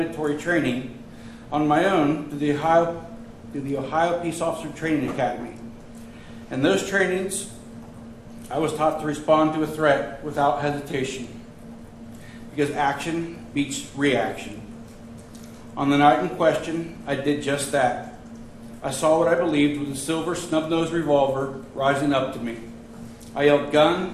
training on my own through the Ohio Peace Officer Training Academy. In those trainings, I was taught to respond to a threat without hesitation, because action beats reaction. On the night in question, I did just that. I saw what I believed was a silver snub-nosed revolver rising up to me. I yelled,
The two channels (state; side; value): identical; both; correlation 1.00